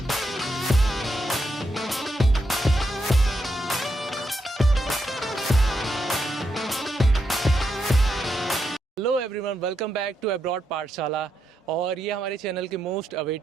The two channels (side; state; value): both; normal; correlation 0.82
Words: Hello everyone, welcome back to abroad Pathshala. और ये हमारे चैनल की मोस्ट